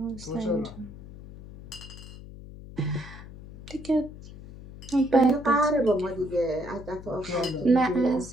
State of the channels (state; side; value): noise; left; hum, 15 dB below the sound